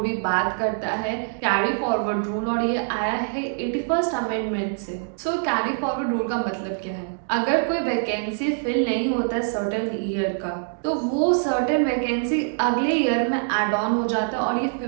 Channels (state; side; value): silent; left; digital silence